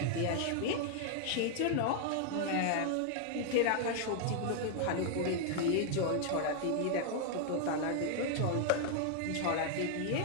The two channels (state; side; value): different; both; correlation 0.00